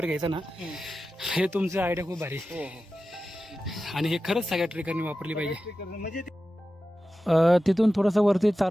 घ्यायचा ना, हे तुमचं आयडिया खूप भारी. आणि हे खरंच सगळ्या ट्रेकरनी वापरली पाहिजे. म्हणजे तिथून थोडंसं वरती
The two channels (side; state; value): both; normal; correlation 0.93